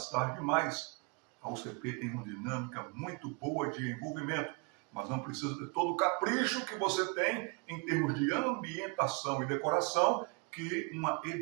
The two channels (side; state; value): left; quieter; 32.5 dB